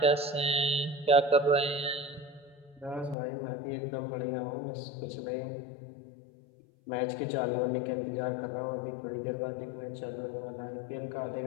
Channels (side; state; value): right; drops out; at 3.2 s